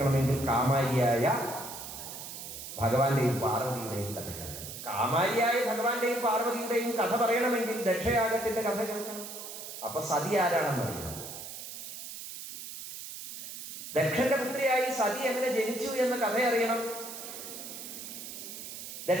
കാമാരിയായ ഭഗവാന്റെയും പാർവതിയുടെയും കഥ കേൾക്കണം. കാമാരിയായ ഭഗവാന്റെയും പാർവതിയുടെയും കഥ പറയണമെങ്കിൽ ദക്ഷയാഗത്തിന്റെ കഥ കേൾക്കണം. അപ്പൊ സതി ആരാണെന്ന് അറിയണം. ദക്ഷന്റെ പുത്രിയായി സതി എങ്ങനെ ജനിച്ചു എന്ന കഥ അറിയണം.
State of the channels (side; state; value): right; noise; hiss, 10 dB below the sound